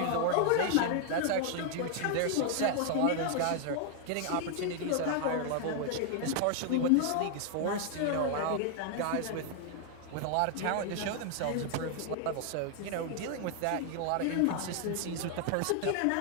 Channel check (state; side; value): different; both; correlation 0.00